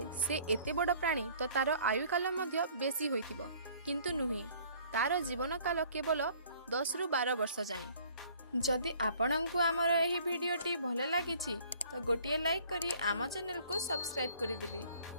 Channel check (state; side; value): inverted; both; correlation -0.55